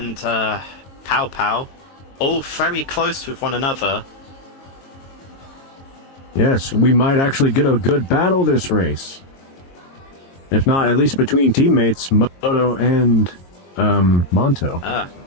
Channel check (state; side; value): late; right; 22 ms